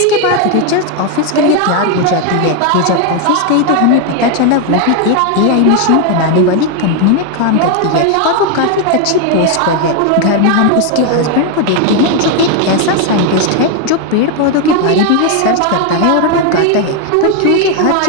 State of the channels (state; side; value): different; both; correlation 0.01